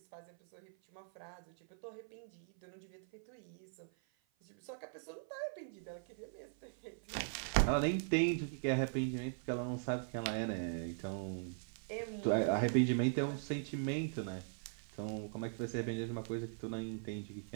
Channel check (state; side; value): silent; left; 51 dB below the other